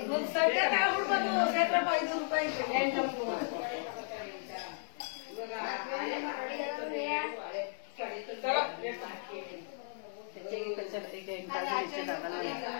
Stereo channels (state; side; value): silent; right; digital silence